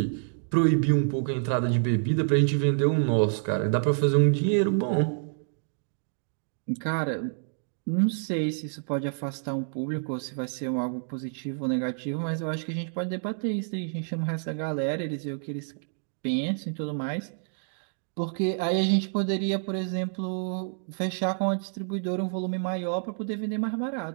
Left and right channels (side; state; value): left; silent; digital silence